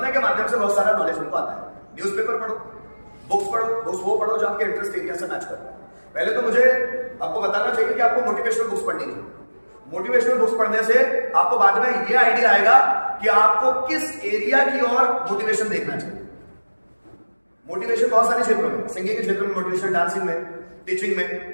के माध्यम से बहुत सारा नॉलेज हमको आता है। न्यूज़पेपर पढ़ो, बुक्स वो पढ़ो जो आपके इंटरेस्ट एरिया से मैच करता है। पहले तो मुझे आपको बताना चाहिए कि आपको मोटिवेशनल बुक्स पढ़नी है। मोटिवेशनल बुक्स पढ़ने से आपको बाद में ये आइडिया आएगा कि आपको किस एरिया की ओर मोटिवेशन देखना चाहिए। मोटिवेशन बहुत सारे क्षेत्रों में, सिंगिंग के क्षेत्र में मोटिवेशन, डांसिंग में, टीचिंग में,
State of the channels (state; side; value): inverted; both; correlation -1.00